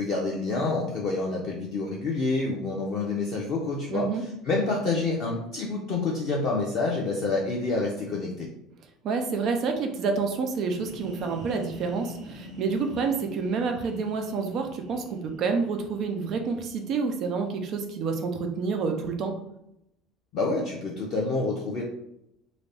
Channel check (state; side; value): normal; both; correlation 0.41